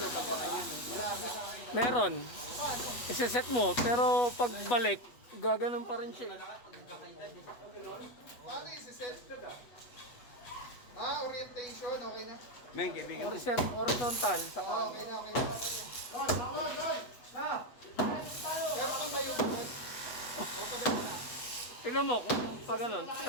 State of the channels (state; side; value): late; right; 8.3 ms